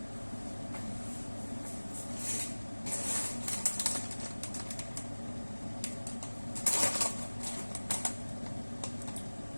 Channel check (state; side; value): inverted; both; correlation -1.00